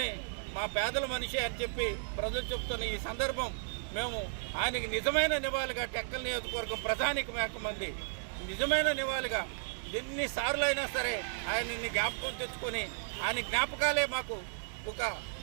మా పేదల మనిషి అని చెప్పి ప్రజలు చెప్తున్న ఈ సందర్భం మేము ఆయనకి నిజమైన నివాళిగా టెక్కల్ నియోజకవర్గం ప్రధానిక మంది నిజమైన నివాళిగా ఎన్నిసార్లు అయినా సరే ఆయన్ని జ్ఞాపకం తెచ్చుకొని ఆయన జ్ఞాపకాలే మాకు ఒక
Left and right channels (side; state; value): left; silent; digital silence